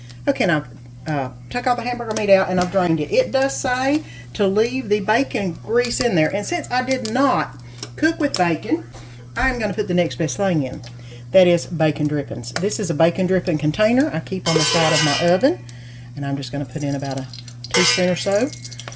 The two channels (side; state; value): both; identical; correlation 1.00